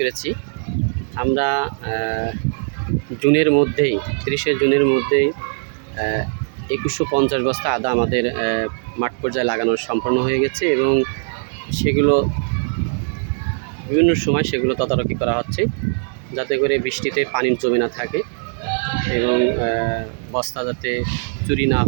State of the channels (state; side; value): silent; left; digital silence